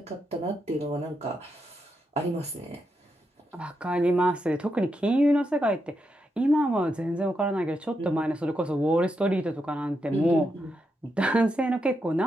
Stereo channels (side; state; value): both; normal; correlation 0.83